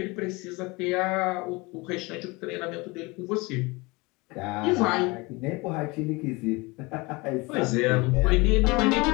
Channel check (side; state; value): right; quieter; 25.0 dB